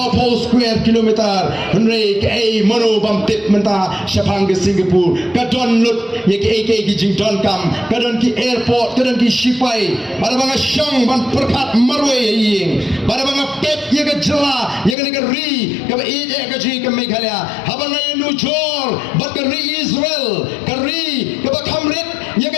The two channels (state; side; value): drops out; right; at 15.0 s